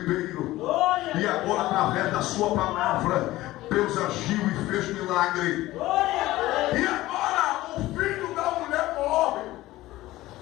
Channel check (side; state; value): right; quieter; 17.0 dB